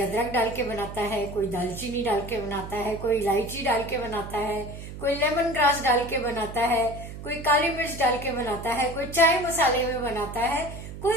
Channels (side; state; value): right; noise; hum, 11 dB below the sound